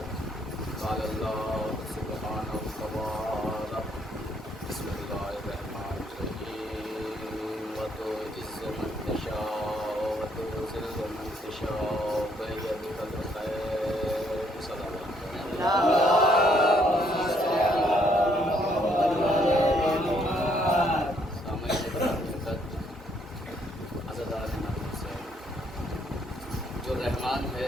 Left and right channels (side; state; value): both; normal; correlation 0.69